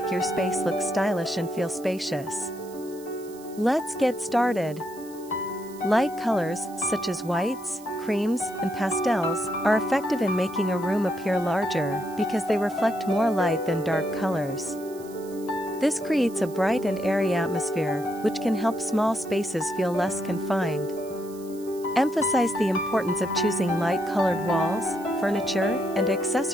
your space look stylish and feel spacious. Let's get started. Light colors, such as whites, creams, and pastels, are effective in making a room appear larger because they reflect more light than dark colors. This creates a bright and airy atmosphere, which can help small spaces feel less confined. Emphasize the importance of choosing light-colored walls, furniture, and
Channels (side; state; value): right; noise; hiss, 21 dB below the sound